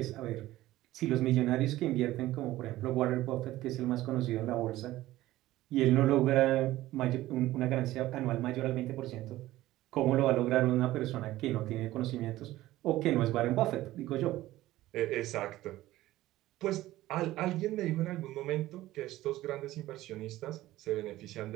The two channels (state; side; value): quieter; left; 16.0 dB